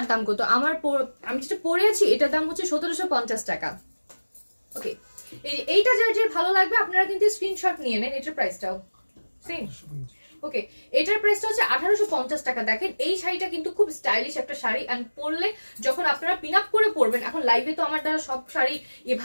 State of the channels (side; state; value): both; inverted; correlation -1.00